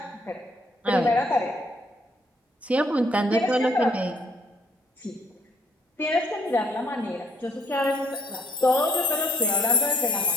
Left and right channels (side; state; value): both; normal; correlation 0.65